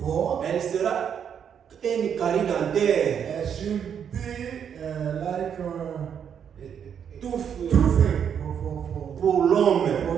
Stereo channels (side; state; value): left; quieter; 8.1 dB